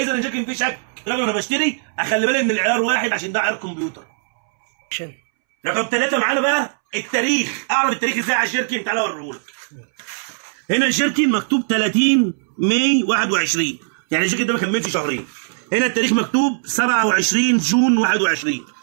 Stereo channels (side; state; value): left; silent; 66 dB below the other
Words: الجيركن فيه شك. لازم انا بشتري اخلي بالي ان العيار واحد عشان ده عيار كمبيوتر. رقم 3 معانا بقى التاريخ. اعرف التاريخ ازاي على الجيركن؟ تعالى اوريهولك. هنا الجيركن مكتوب 30 ماي 21، يعني الجيركن ده ما كملش شهرين. هنا التاريخ مكتوب 27 جون 21.